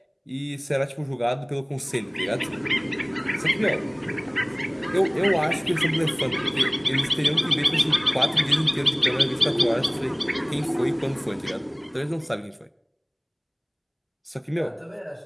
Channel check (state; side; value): identical; both; correlation 1.00